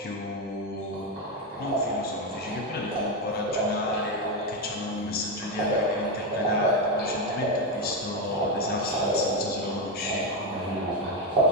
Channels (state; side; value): normal; both; correlation 0.08